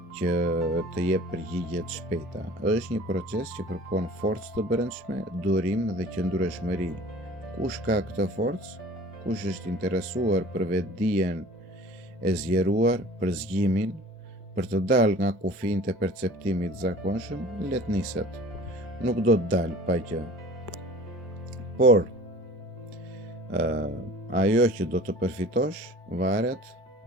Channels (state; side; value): normal; both; correlation 0.45